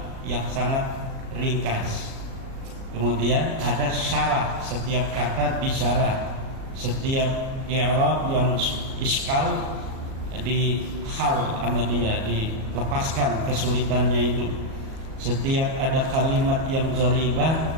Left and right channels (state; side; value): late; left; 37 ms